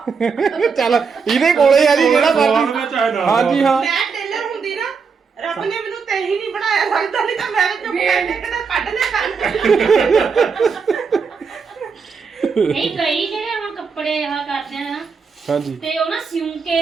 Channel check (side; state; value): left; quieter; 5.5 dB